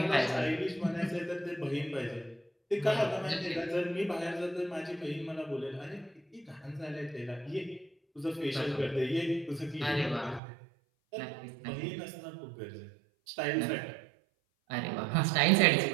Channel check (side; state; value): left; drops out; at 10.4 s